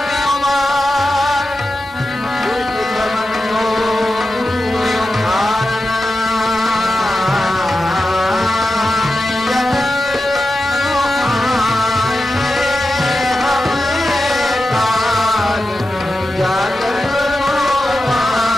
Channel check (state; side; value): normal; both; correlation 0.91